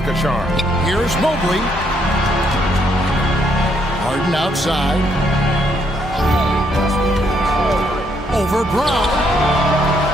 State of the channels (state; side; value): normal; both; correlation 0.72